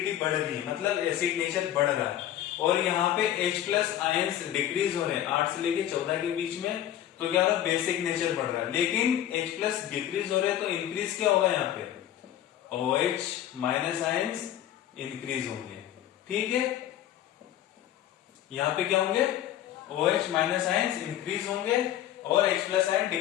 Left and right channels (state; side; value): quieter; right; 11.9 dB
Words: बढ़ रही है, मतलब एसिड नेचर बढ़ रहा है। और यहाँ पे H प्लस आयंस डिक्रीज हो रहे हैं 8 से लेके 14 के बीच में, तो क्या हो रहा है, बेसिक नेचर बढ़ रहा है। लेकिन H प्लस डिक्रीज हो रहे हैं तो इंक्रीज क्या होगा, यहाँ पे OH माइनस आयंस इंक्रीज होंगे। ठीक है, यहाँ पे क्या होंगे, OH माइनस आयंस इंक्रीज होंगे और H प्लस आयन